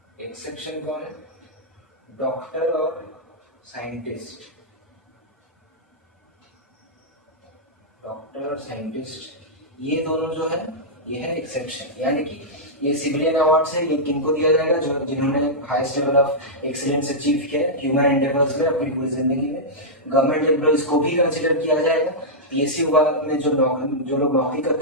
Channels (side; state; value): both; normal; correlation -0.10